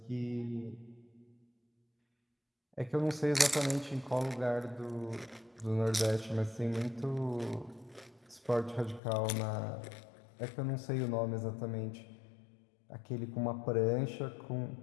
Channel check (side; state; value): right; drops out; at 9.0 s